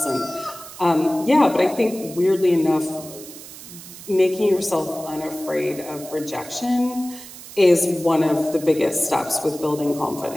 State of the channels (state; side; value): noise; right; hiss, 15 dB below the sound